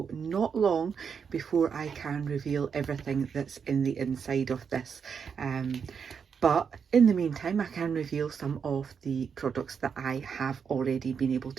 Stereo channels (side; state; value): left; quieter; 6.6 dB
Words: not long before I can reveal everything that's in the inside of this. But in the meantime, I can reveal some of the products that I have already been able